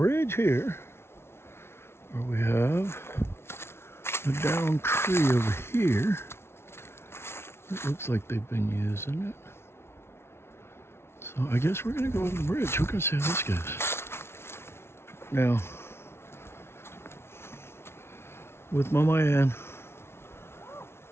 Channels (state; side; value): late; right; 0.12 ms